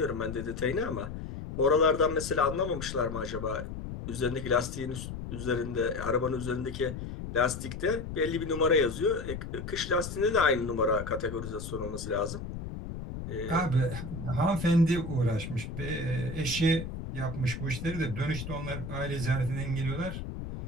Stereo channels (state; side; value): noise; left; rumble, 8 dB below the sound